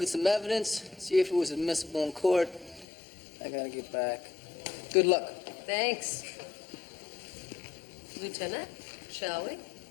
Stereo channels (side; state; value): right; drops out; at 2.9 s